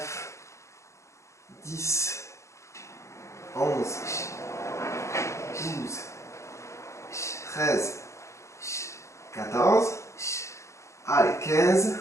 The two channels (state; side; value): late; right; 0.14 ms